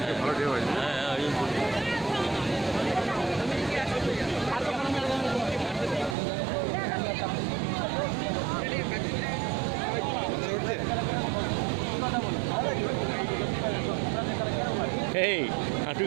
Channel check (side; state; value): left; drops out; at 6.2 s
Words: ভালো ডে হয়। এই হাঁটু